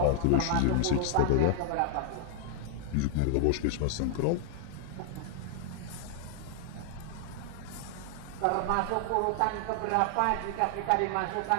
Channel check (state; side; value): different; both; correlation 0.00